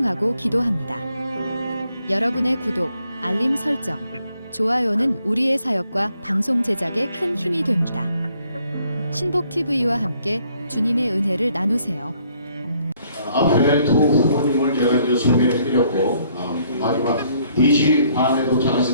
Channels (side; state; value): both; inverted; correlation -0.67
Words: 기도합니다. 여러분의 구독, 알림 설정, 좋아요는 우리의 사역과 방송 제작에 큰 힘이 됩니다. 신복TV와 함께 주님의 은혜를 나누세요. 앞에 두 후보님을 제가 이제 소개해드렸고 마지막 4시 반에